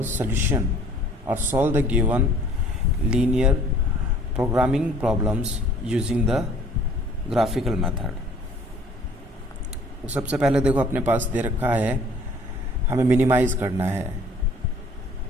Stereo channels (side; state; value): both; normal; correlation 0.55